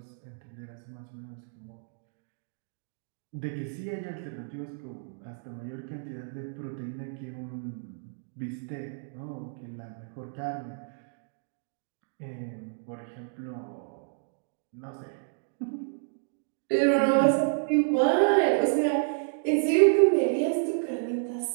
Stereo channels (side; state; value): left; silent; digital silence